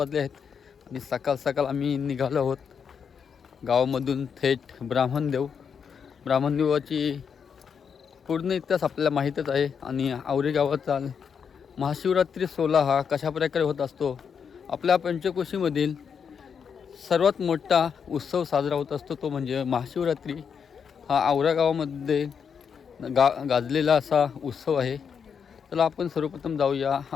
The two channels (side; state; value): right; quieter; 6.8 dB